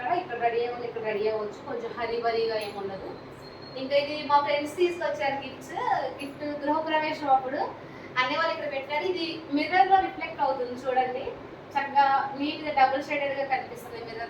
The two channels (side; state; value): both; identical; correlation 1.00